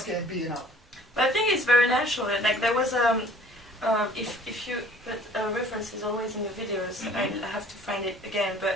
getting beaten up. But I think it's very natural. Like there was if you put references always in your videos, I have to find it again.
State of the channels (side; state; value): both; normal; correlation 0.53